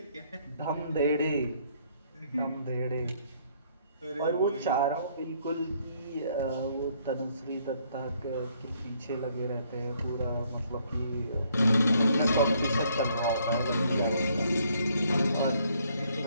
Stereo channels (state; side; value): inverted; both; correlation -0.67